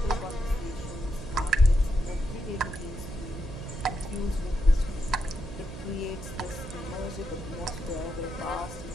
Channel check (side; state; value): right; noise; hum, 12 dB below the sound